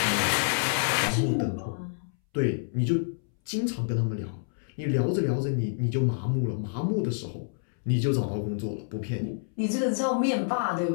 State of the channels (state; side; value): silent; right; 59 dB below the other